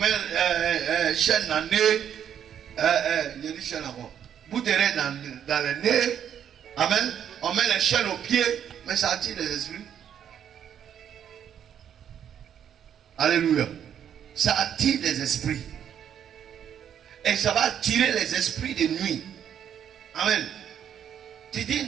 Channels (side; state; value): left; quieter; 9.1 dB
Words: chaîne dans le nez. Il y a des chaînes encore. Bout de raie dans le nez. Amen. On met les chaînes aux pieds, mais ça attire les esprits. Alléluia. Ça attire les esprits. Et ça va attirer les esprits de nuit. Amen. Tu dis